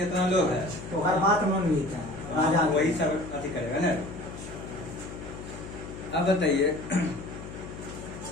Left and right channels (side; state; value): left; noise; hum, 12 dB below the sound